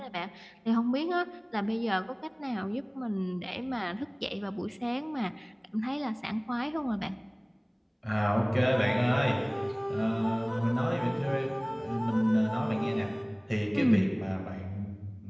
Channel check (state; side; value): identical; both; correlation 1.00